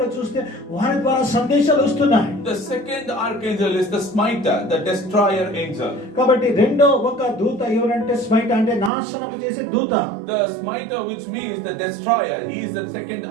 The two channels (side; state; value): left; drops out; at 8.9 s